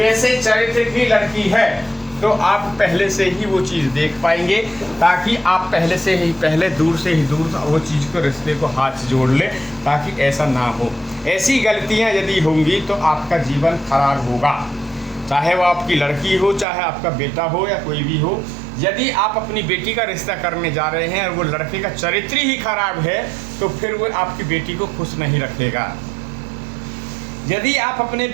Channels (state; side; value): drops out; left; at 16.7 s